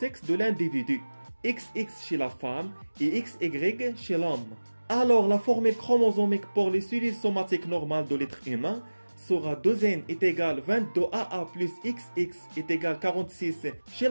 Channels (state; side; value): inverted; both; correlation -1.00